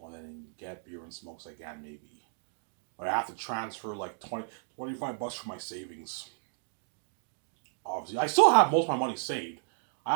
and then get beer and smokes again, maybe. But I have to transfer like 25 bucks from my savings. Obviously, I still have most of my money saved. I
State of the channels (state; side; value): silent; left; digital silence